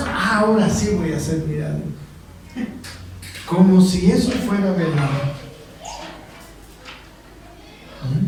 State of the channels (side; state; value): both; identical; correlation 1.00